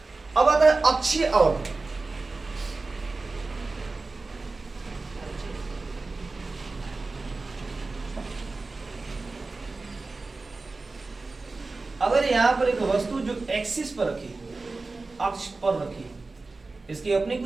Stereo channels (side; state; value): left; quieter; 3.6 dB